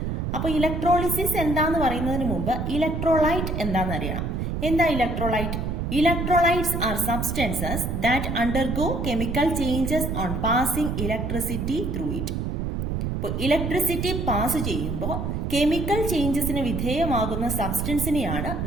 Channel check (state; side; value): noise; right; rumble, 2 dB below the sound